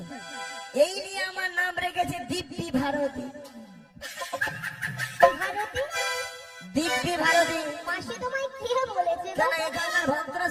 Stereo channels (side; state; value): both; identical; correlation 1.00